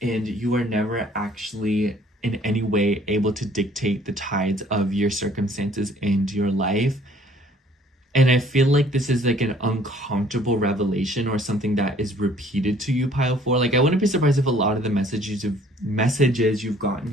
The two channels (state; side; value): normal; both; correlation 0.57